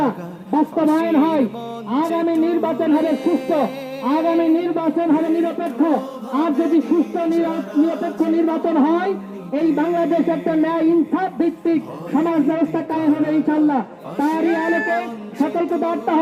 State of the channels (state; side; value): identical; both; correlation 1.00